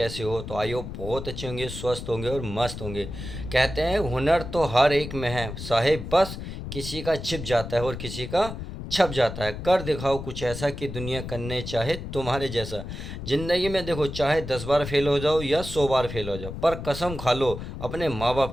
हो? तो आई होप बहुत अच्छे होंगे, स्वस्थ होंगे और मस्त होंगे। कहते हैं हुनर तो हर एक में है साहेब, बस किसी का छिप जाता है और किसी का छप जाता है। कर दिखाओ कुछ ऐसा कि दुनिया करने चाहे तुम्हारे जैसा। ज़िंदगी में देखो, चाहे 10 बार फेल हो जाओ या 100 बार फेल हो जाओ, पर कसम खा लो अपने माँ बाप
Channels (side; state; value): left; noise; rumble, 8 dB below the sound